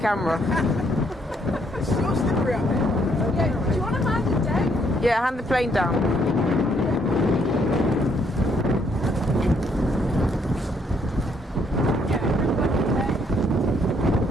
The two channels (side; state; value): both; normal; correlation 0.70